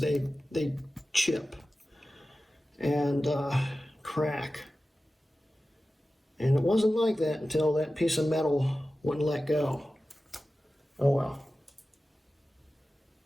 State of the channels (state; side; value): normal; both; correlation 0.95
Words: chip and crack. And it wasn't like that until that piece of metal wouldn't let go. Oh well.